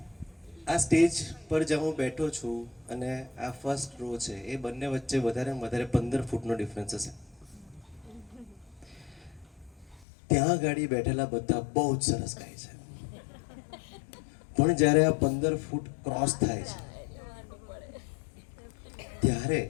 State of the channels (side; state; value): right; drops out; at 10.1 s